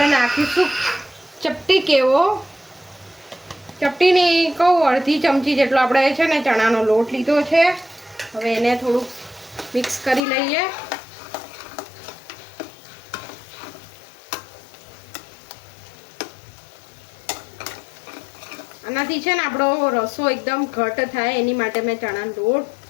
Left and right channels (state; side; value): drops out; right; at 10.2 s